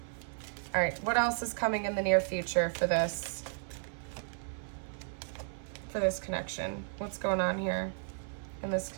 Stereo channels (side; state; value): left; silent; 55 dB below the other